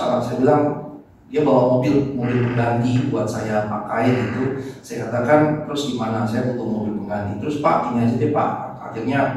saya bilang dia bawa mobil pengganti buat saya pakai gitu. Saya katakan terus gimana, saya butuh mobil pengganti. Terus Pak gini aja deh Pak. Akhirnya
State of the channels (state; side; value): identical; both; correlation 1.00